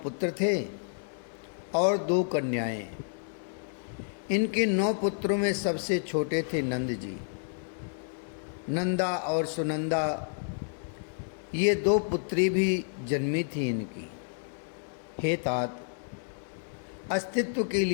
थे और 2 कन्याएं। इनके 9 पुत्रों में सबसे छोटे थे नंद जी। नंदा और सुनंदा ये 2 पुत्री भी जन्मी थी इनकी। हे तात, अस्तित्व की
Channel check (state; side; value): silent; right; digital silence